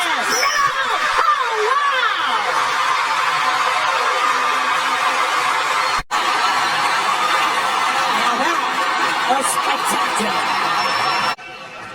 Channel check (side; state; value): both; identical; correlation 1.00